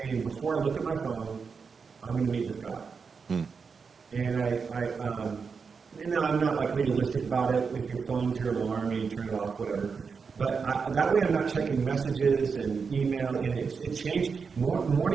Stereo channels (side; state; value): left; quieter; 5.5 dB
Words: before I look at my phone, I'm going to meet with God. And no, I'm not like legalistic about it. If your phone's your alarm and you turn it off, whatever. But that way I'm not checking messages and email. And it changed.